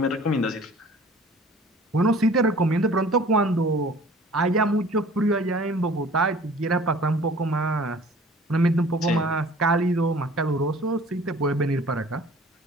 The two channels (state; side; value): normal; both; correlation 0.49